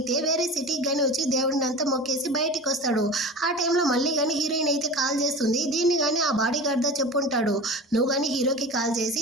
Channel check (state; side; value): normal; both; correlation 0.32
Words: వేరే సిటీకి కానీ వచ్చి దేవుడిని అంతా మొక్కేసి బయటికి వస్తాడు. ఆ టైంలో మళ్ళీ కానీ హీరోయిన్ అయితే కాల్ చేస్తుంది. దీన్ని కానీ ఆ బాడీ గార్డ్ దా చెప్పుంటాడు, నువ్వు కానీ హీరోకి కాల్ చేసి